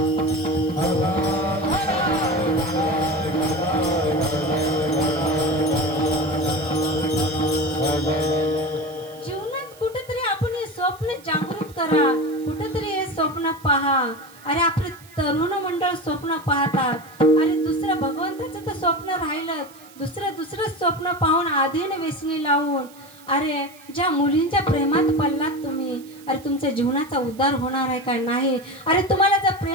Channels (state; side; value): noise; right; hiss, 23 dB below the sound